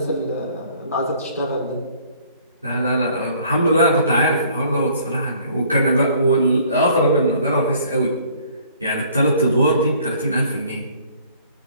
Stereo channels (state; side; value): inverted; both; correlation -0.57